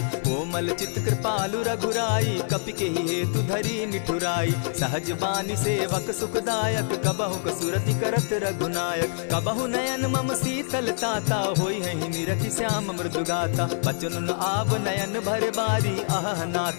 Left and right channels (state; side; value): silent; right; 61 dB below the other